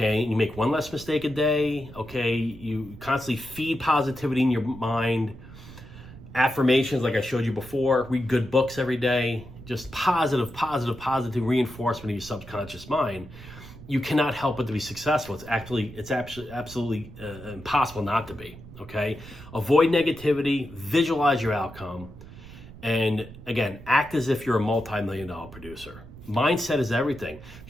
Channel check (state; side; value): noise; right; rumble, 16 dB below the sound